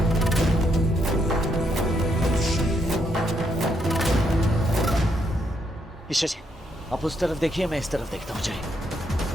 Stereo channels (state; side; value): normal; both; correlation 0.76